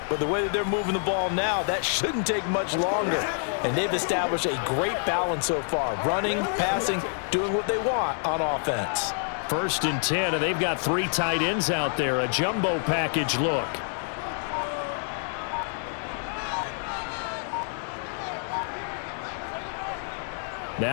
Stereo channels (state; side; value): silent; right; 59 dB below the other